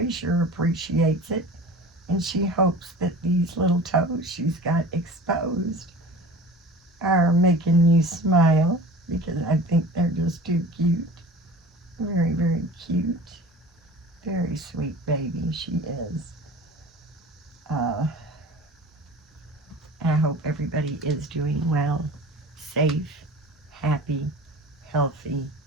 sure appreciates it, and she hopes that these little toes she's got exposed are making you smile, because I think they're just too cute. Very, very cute. Very sweet baby she is. I hope everybody is doing well, safe, happy, healthy,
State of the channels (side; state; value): both; normal; correlation 0.39